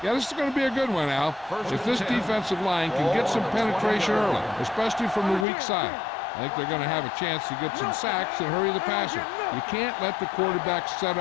Yeah, this is going to be a good one, Al. If this defensive line can get some penetration early, especially from the weak side, I think they're going to have a chance to get some sacks and hurry the passer. You can't let the quarterback set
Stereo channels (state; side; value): drops out; right; at 5.5 s